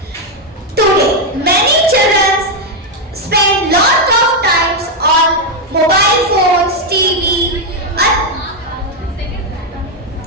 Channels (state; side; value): normal; both; correlation 0.03